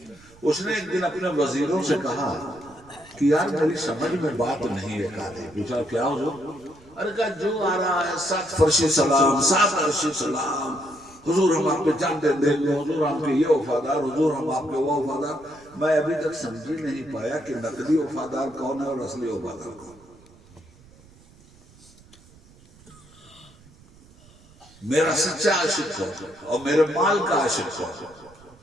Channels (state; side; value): noise; right; rumble, 26 dB below the sound